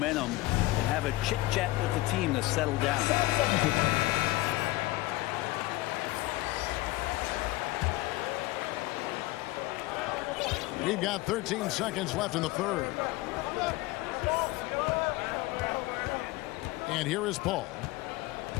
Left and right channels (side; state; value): right; quieter; 18.9 dB